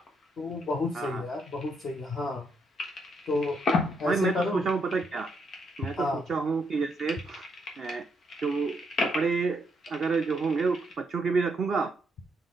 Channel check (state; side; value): normal; both; correlation 0.76